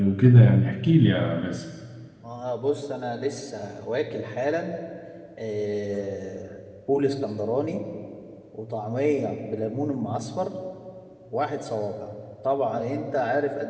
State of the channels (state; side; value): identical; both; correlation 1.00